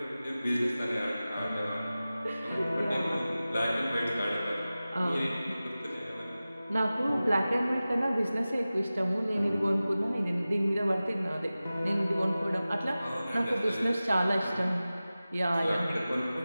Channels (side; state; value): both; inverted; correlation -0.96